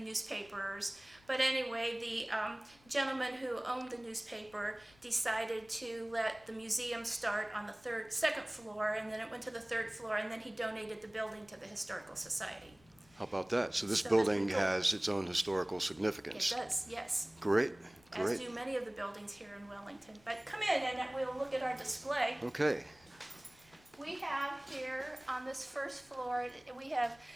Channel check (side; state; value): left; noise; rumble, 28 dB below the sound